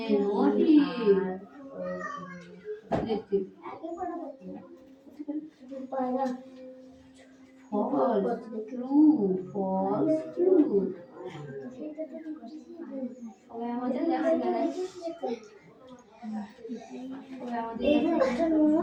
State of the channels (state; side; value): identical; both; correlation 1.00